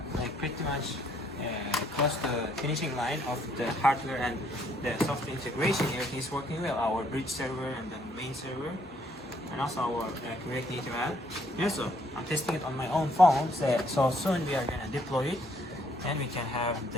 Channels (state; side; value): normal; both; correlation 0.67